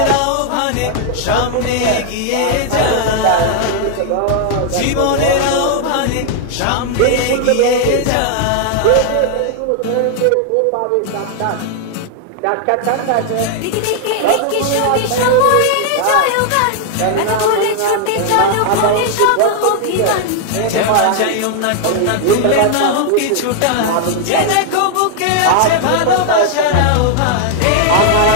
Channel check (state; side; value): different; both; correlation 0.00